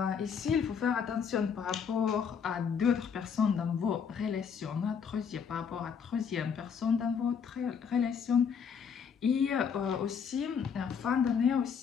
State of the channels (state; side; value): quieter; right; 6.8 dB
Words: Ici, il faut faire attention par rapport à d'autres personnes dans vos relations, par rapport à troisième personne dans votre relation. Et aussi, en fin d'année,